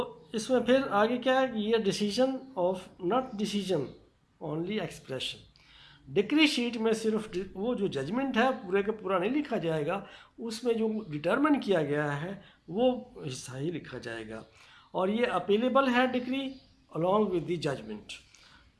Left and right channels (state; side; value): identical; both; correlation 1.00